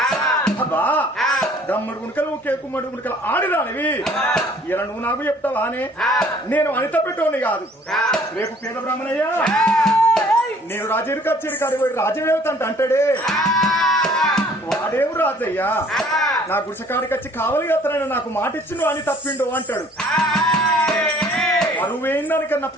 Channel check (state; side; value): normal; both; correlation 0.56